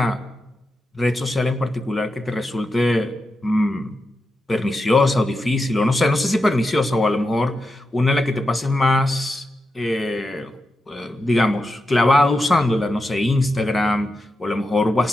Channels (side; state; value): both; normal; correlation 0.88